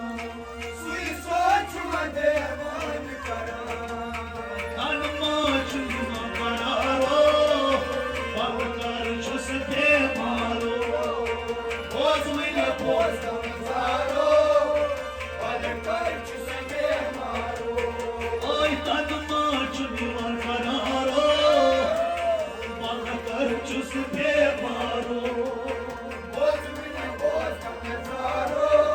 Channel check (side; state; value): both; identical; correlation 1.00